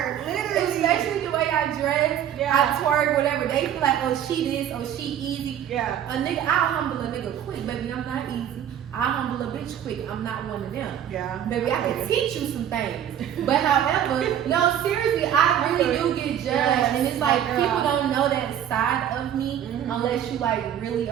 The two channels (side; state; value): left; quieter; 10.1 dB